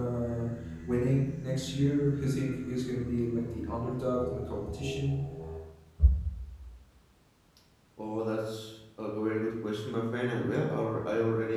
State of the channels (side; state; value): both; identical; correlation 1.00